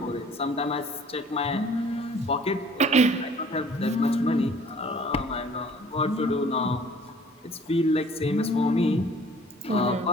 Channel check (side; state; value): both; normal; correlation 0.53